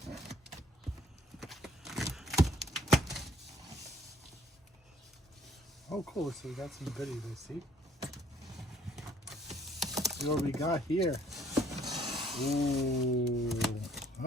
Oh, cool. So we got some goodies, I see. See what we got here. Ooh.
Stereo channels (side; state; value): both; normal; correlation 0.61